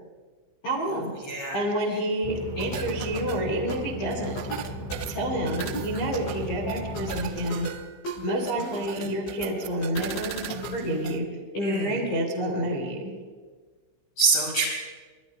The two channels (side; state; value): right; late; 16 ms